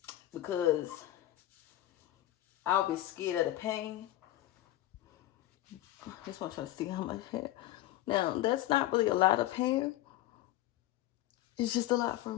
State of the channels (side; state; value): right; quieter; 14.8 dB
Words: because I'll be scared of the pain. I just want you to see how much hair. Now that's not really a lot of hair. It's just a lot for